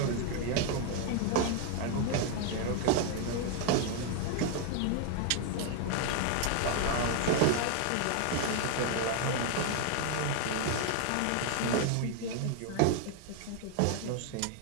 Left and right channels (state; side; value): different; both; correlation 0.00